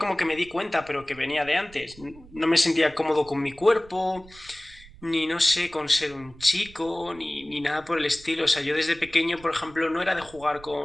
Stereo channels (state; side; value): noise; right; rumble, 22 dB below the sound